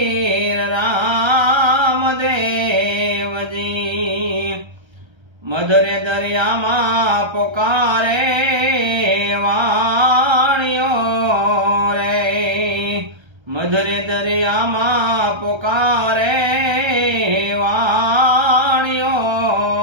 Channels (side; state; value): left; late; 1.3 ms